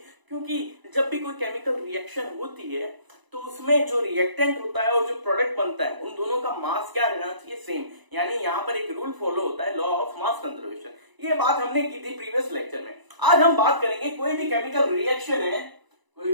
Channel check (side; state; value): left; late; 1.0 ms